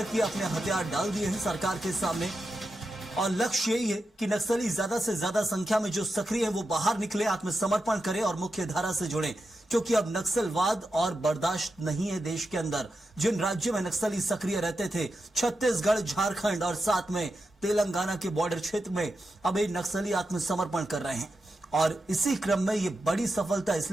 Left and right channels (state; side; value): normal; both; correlation 0.89